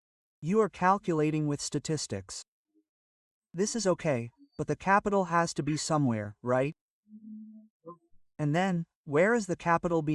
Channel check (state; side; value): identical; both; correlation 1.00